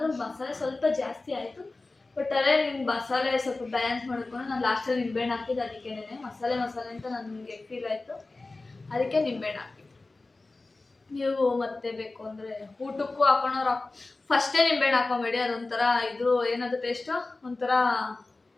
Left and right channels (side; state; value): right; quieter; 3.3 dB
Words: ಮಸಾಲೆ ಸ್ವಲ್ಪ ಜಾಸ್ತಿ ಆಯಿತು. ಬಟ್ ಅದೇ ನಿಮ್ಗೆ ಮಸಾಲೆ ಸ್ವಲ್ಪ ಬ್ಯಾಲೆನ್ಸ್ ಮಾಡ್ಕೊಂಡು ನಾನು ಲಾಸ್ಟಲ್ಲಿ ನಿಂಬೆಹಣ್ಣು ಹಾಕಿದ್ದು. ಅದಕ್ಕೇನೆ ಮಸಾಲೆ ಅಂತ ನನಗೆ ಫೀಲ್ ಆಯಿತು, ಅದಕ್ಕೆ ನಿಂಬೆಹಣ್ಣು ಹಾಕಿದ್ದು. ನೀವು ಮತ್ತೆ ಬೇಕು ಅಂದರೆ ಊಟಕ್ಕೂ